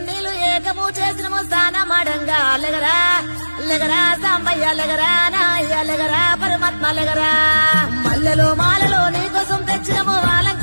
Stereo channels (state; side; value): inverted; both; correlation -1.00